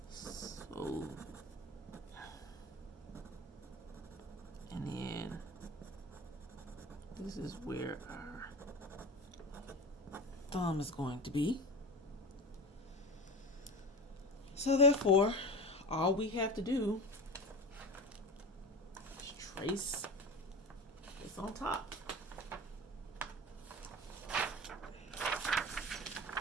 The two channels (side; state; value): both; normal; correlation 0.30